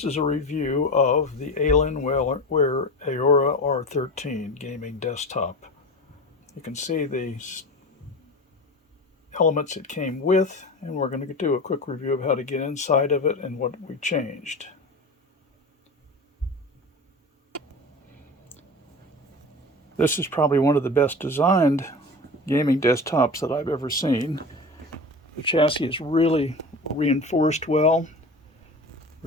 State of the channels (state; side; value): normal; both; correlation 0.30